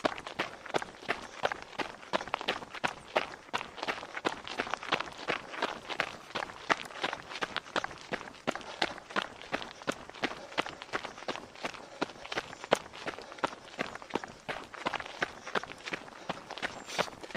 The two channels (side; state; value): both; identical; correlation 1.00